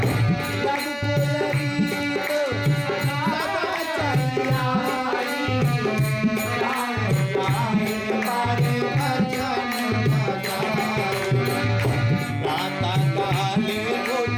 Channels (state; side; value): identical; both; correlation 1.00